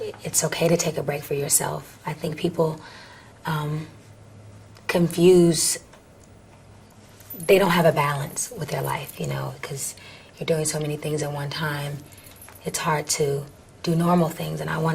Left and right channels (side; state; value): both; identical; correlation 1.00